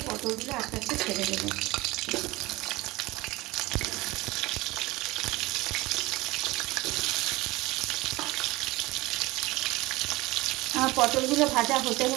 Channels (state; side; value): quieter; left; 20.6 dB